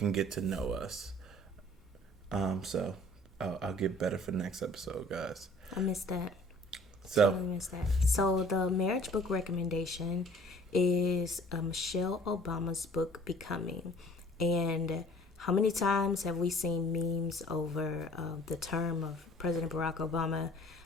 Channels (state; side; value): normal; both; correlation 0.52